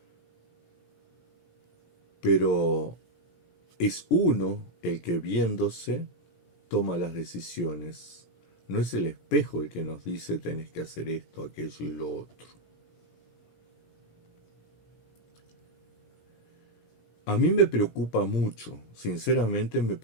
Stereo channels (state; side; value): late; right; 17 ms